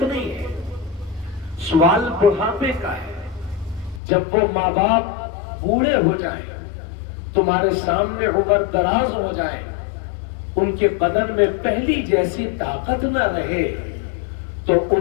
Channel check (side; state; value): right; drops out; at 4.0 s